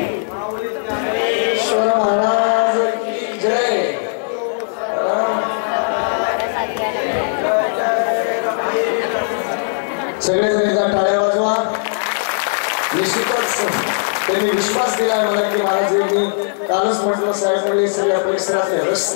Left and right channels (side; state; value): right; silent; digital silence